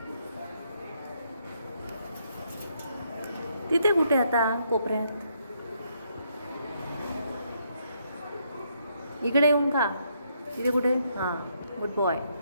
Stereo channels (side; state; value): both; inverted; correlation -0.74